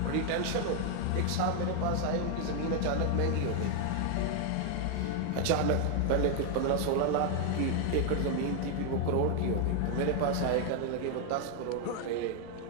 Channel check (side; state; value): both; different; correlation 0.01